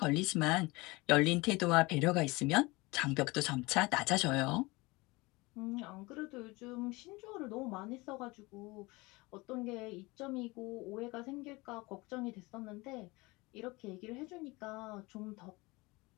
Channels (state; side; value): quieter; right; 23.5 dB